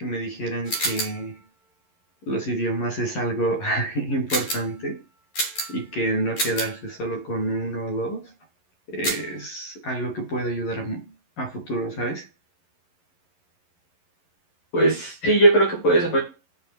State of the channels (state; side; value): late; right; 11 ms